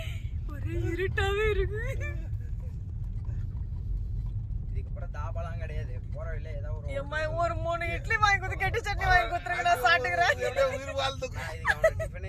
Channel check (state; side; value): identical; both; correlation 1.00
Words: ஒரே இருட்டாவே இருக்கு. இதுக்கு அப்புறம் தாபாலாம் கிடையாது. போற வழியில ஏதாவது ஒரு 3 இட்லி வாங்கி கொடுத்து கெட்டி சட்னி வாங்கி கொடுத்துருங்க. நான் சாப்பிட்டுக்கிறேன். எப்படியே உயிர் வாழ்ந்து இதுக்கு அவன்